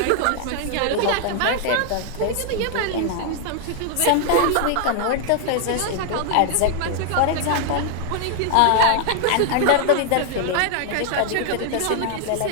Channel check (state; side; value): different; both; correlation 0.00